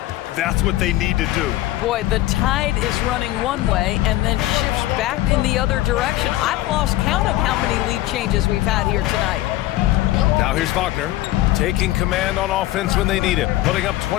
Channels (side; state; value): right; quieter; 15.9 dB